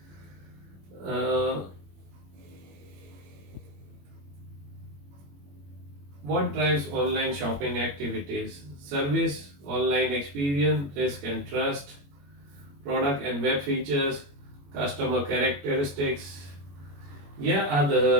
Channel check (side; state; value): left; late; 21 ms